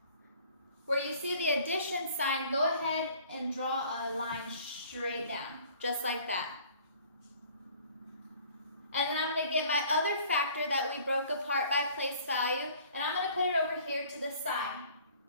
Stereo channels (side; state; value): both; inverted; correlation -0.52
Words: Where you see the addition sign, go ahead and draw a line straight down, just like that. And then I'm going to get my other factor that we broke apart by place value, and I'm going to put it over here to the side.